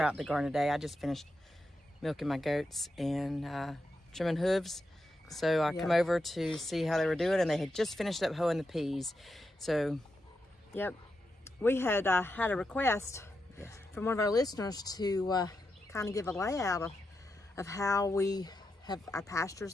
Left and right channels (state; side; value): normal; both; correlation 0.87